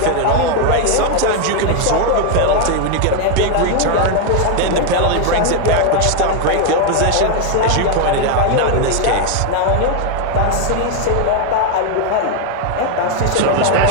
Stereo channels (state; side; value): different; both; correlation 0.01